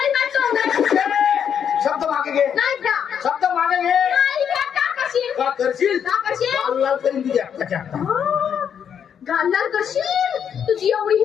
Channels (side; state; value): right; quieter; 8.1 dB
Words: नाचवून शब्द मागे घे. नाही का शब्द मागे घे. नाही का का करशील? का करशील? का करशील? लाल लाल करीन तुझ्या हाताच्या. गालाल करशील? तुझी एवढी